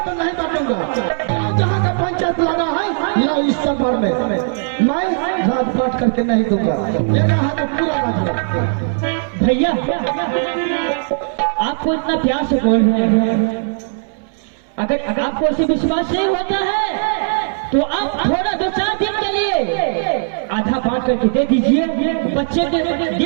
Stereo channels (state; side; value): silent; left; 64 dB below the other